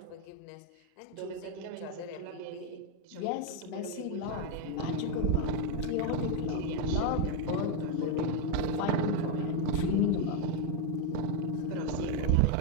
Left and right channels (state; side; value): different; both; correlation 0.01